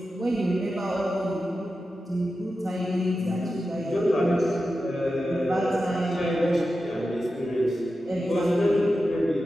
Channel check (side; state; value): both; normal; correlation 0.91